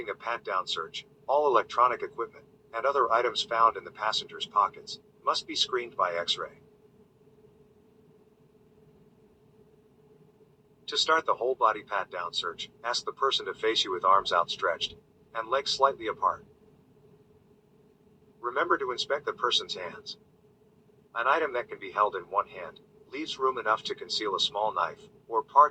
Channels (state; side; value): identical; both; correlation 1.00